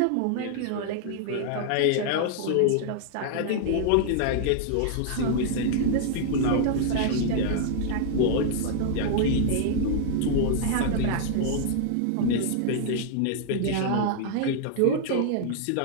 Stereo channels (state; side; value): different; both; correlation -0.01